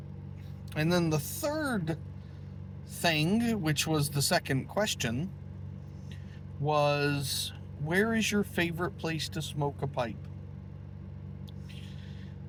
And then the third thing, which was the second question, was, where is your favorite place to smoke a pipe?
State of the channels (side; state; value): both; identical; correlation 1.00